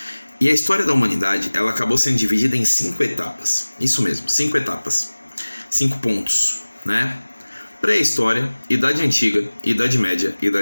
E a história da humanidade ela acabou sendo dividida em 5 etapas. Isso mesmo, 5 etapas, 5 pontos, né? Pré-história, Idade Antiga, Idade Média,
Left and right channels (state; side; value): inverted; both; correlation -1.00